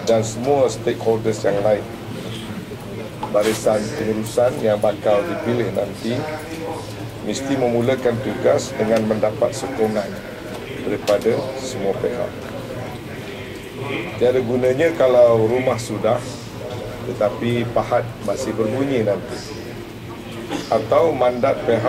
dan semua stakeholders yang lain. Barisan pengurusan yang bakal dipilih nanti mesti memulakan tugas dengan mendapat sokongan daripada semua pihak. Tiada gunanya kalau rumah sudah tetapi pahat masih berbunyi nanti, atau mandat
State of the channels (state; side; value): identical; both; correlation 1.00